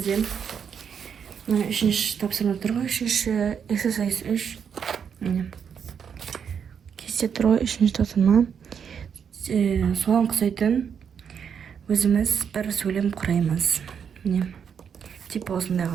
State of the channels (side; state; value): left; quieter; 7.3 dB